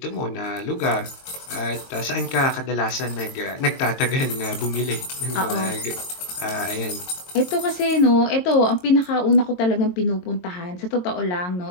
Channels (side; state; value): right; late; 22 ms